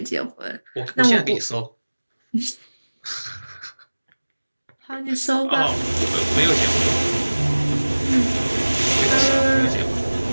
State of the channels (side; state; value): both; inverted; correlation -1.00